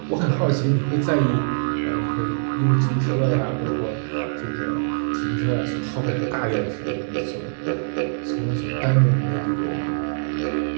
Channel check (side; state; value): left; silent; digital silence